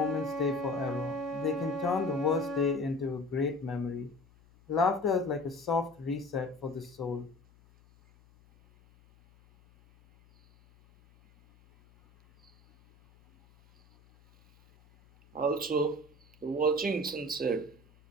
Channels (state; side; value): noise; left; hum, 28 dB below the sound